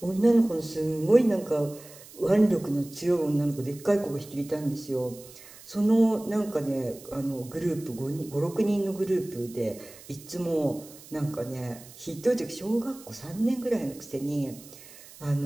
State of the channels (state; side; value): noise; right; hiss, 19 dB below the sound